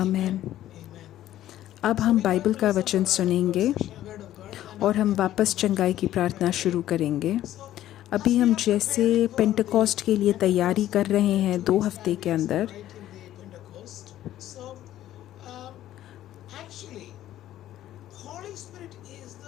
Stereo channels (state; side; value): quieter; right; 13.1 dB